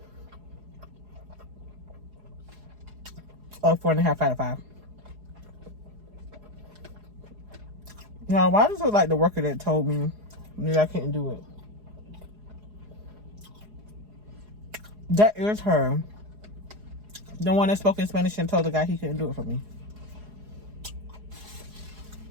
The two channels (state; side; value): late; left; 4.8 ms